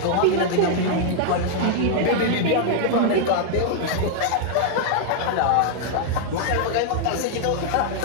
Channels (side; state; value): both; different; correlation -0.01